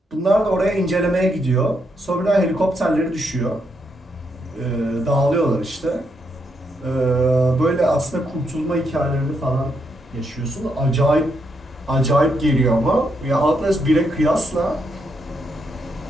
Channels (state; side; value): normal; both; correlation 0.79